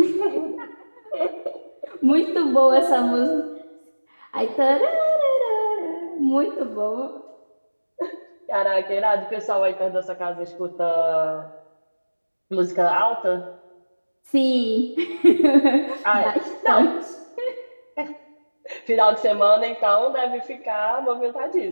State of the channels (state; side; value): inverted; both; correlation -1.00